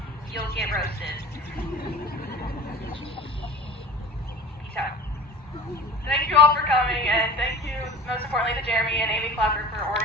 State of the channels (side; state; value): both; normal; correlation 0.39